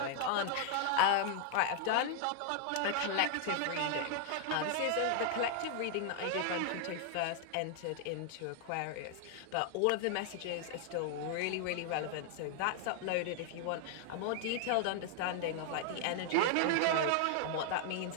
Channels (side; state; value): both; different; correlation 0.00